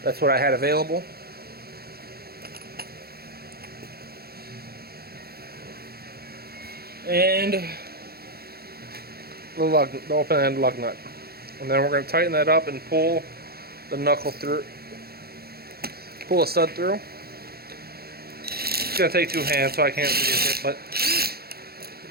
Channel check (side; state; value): left; late; 0.45 ms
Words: That's what I had available. And the open end lug nut. And then we're going to tighten that up and pull the knuckle through. Pull a stud through. It's going to take two hands, so I can't read it, but you